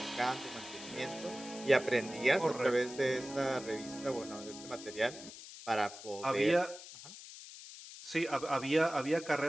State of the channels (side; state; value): left; noise; hiss, 14 dB below the sound